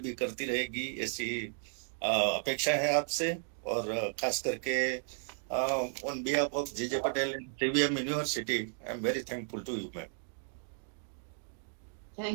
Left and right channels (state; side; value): silent; left; 55 dB below the other